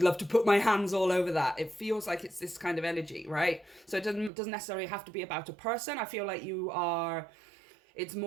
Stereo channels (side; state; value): left; drops out; at 4.3 s